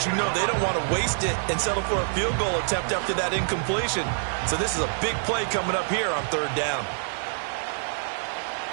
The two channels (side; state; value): left; silent; digital silence